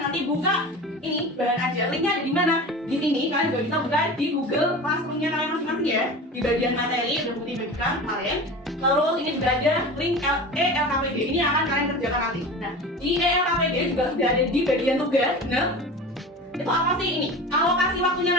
buka ini bahan ajar, linknya ada di mana? Di sini kalian juga bisa buka di Google Classroom-nya kalian masing-masing ya. Di bagian materi udah putih bagikan kemarin. Terus ini juga ada link ELKPD, ini yang akan kalian kerjakan nanti. Nah di ELKPD juga sudah ada di bagian tugas. Nah itu apa sih ini? Alokasi waktunya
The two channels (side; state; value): both; normal; correlation 0.33